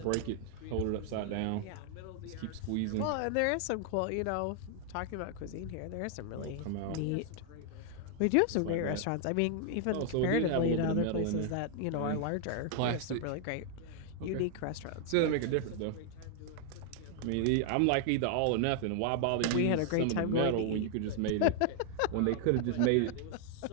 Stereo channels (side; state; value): both; different; correlation 0.00